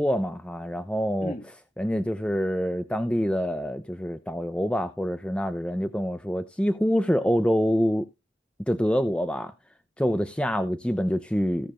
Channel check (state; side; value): normal; both; correlation 0.95